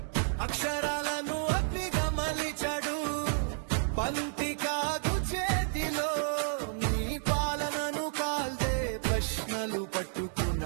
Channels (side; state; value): left; silent; digital silence